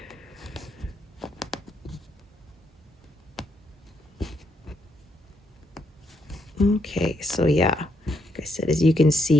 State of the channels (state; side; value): normal; both; correlation 0.77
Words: Okay, so yeah, like I said, as you can